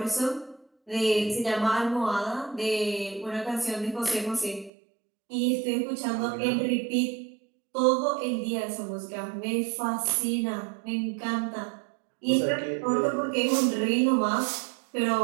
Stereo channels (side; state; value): left; drops out; at 4.7 s